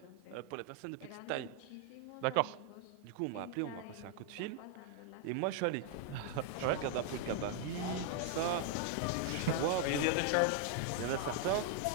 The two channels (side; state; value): both; different; correlation 0.00